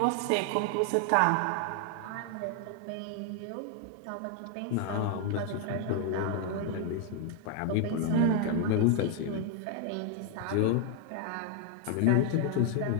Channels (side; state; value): both; different; correlation 0.00